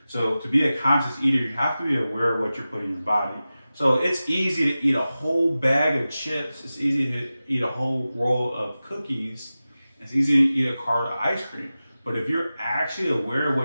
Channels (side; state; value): both; inverted; correlation -0.95